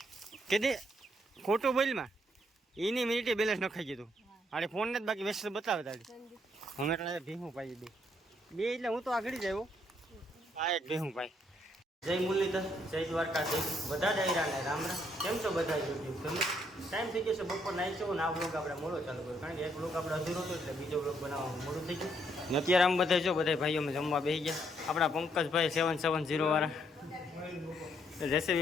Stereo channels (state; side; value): normal; both; correlation 0.72